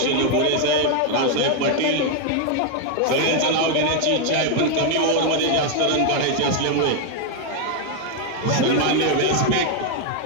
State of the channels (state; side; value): different; both; correlation 0.00